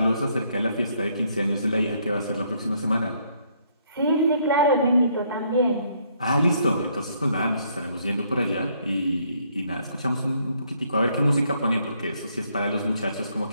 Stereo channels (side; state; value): both; inverted; correlation -0.69